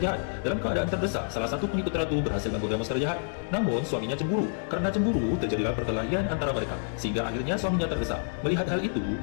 Dalam keadaan terdesak, salah satu pengikut ratu berhasil menggoda monster jahat. Namun suaminya cemburu. Karena cemburu, terjadilah perkelahian antara mereka, sehingga akhirnya suaminya terdesak. Melihat hal itu,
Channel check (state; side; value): silent; right; digital silence